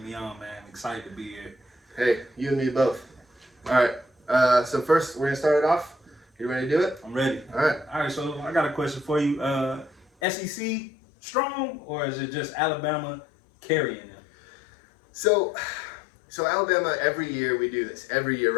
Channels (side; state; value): right; drops out; at 10.1 s